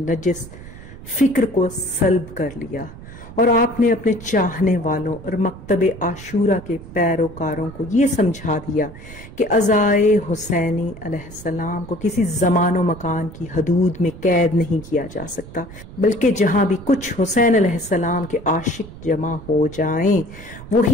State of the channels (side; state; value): right; noise; rumble, 16 dB below the sound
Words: فکر کو سلب کر لیا، اور آپ نے اپنے چاہنے والوں اور مکتب عاشورہ کے پیروکاروں کو یہ سمجھا دیا کہ عزائے حسینی علیہ السلام کو کسی زمان و مکان کی حدود میں قید نہیں کیا جا سکتا، بلکہ جہاں بھی کچھ حسین علیہ السلام کے عاشق جمع ہو جائیں